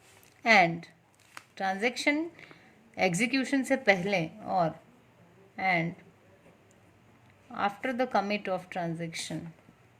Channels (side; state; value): both; identical; correlation 1.00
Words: and transaction execution से पहले और and after the commit of transaction,